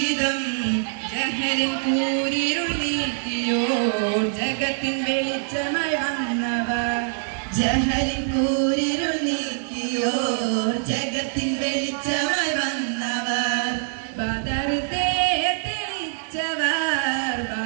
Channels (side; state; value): left; silent; digital silence